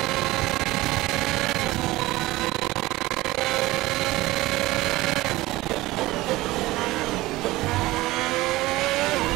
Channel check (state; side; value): quieter; left; 18.6 dB